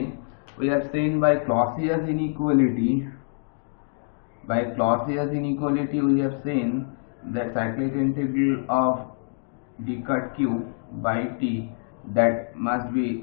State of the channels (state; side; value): silent; right; digital silence